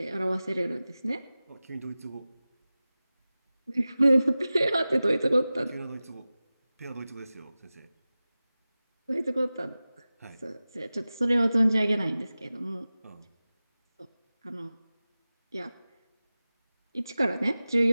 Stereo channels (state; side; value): inverted; both; correlation -0.96